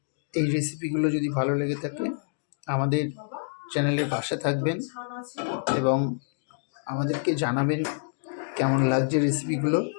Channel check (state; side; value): silent; right; digital silence